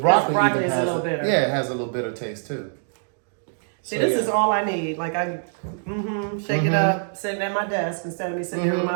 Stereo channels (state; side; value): silent; left; digital silence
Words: even is has a little bitter. Yeah, it has a little bitter taste too. See, this is all I need. Like, I shake it up, sitting at my desk instead of me sitting here with